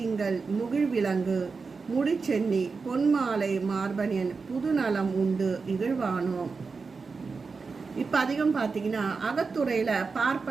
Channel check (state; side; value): quieter; left; 4.7 dB